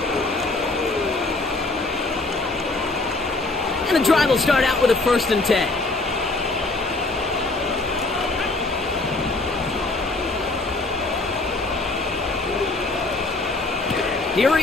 And the drive will start out with a 1st and 10. Here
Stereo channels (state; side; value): quieter; right; 3.2 dB